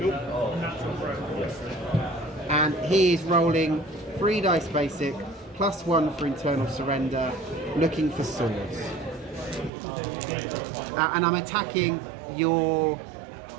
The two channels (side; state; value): left; drops out; at 9.7 s